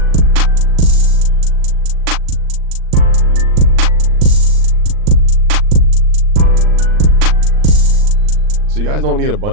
So you guys don't need a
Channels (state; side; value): late; left; 39 ms